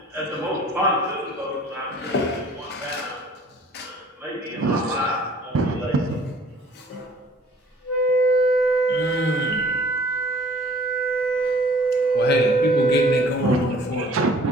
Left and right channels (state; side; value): normal; both; correlation 0.52